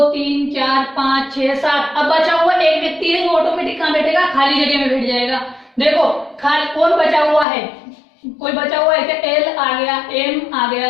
3 4 5 6 7। अब बचा हुआ एक व्यक्ति है जो ऑटोमेटिक कहाँ बैठेगा, खाली जगह में बैठ जाएगा। देखो कौन बचा हुआ है, कोई बचा हुआ है क्या, एल आ गया, एम आ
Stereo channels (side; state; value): right; drops out; at 7.5 s